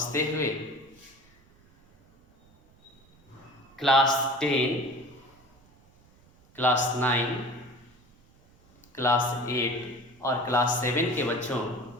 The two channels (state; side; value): noise; right; rumble, 30 dB below the sound